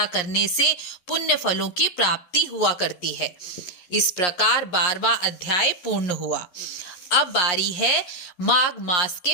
करने से पुण्य फलों की प्राप्ति हुआ करती है। इस प्रकार 12वां अध्याय पूर्ण हुआ। अब बारी है माघ मास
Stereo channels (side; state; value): right; late; 11 ms